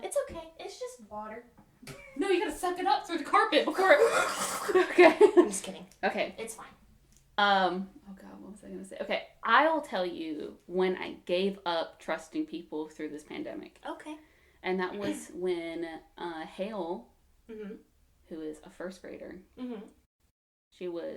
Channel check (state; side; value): identical; both; correlation 1.00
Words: It's okay. It's just water. No, you gotta suck it up through the carpet before it... Okay. I'm just kidding. Okay. It's fine. Oh God, what was I gonna say? Okay, I'll tell you when I gave up trusting people through this pandemic. Okay. And that was when Hale, mm-hmm. who is a first grader, mm-hmm. she